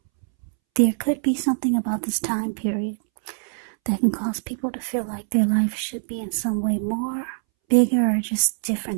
There could be something about this time period that can cause people to feel like their life should be in some way more bigger or just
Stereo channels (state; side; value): silent; left; 63 dB below the other